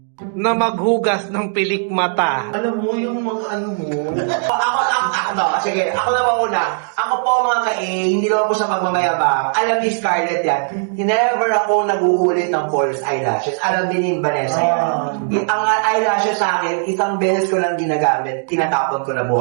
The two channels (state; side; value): silent; left; digital silence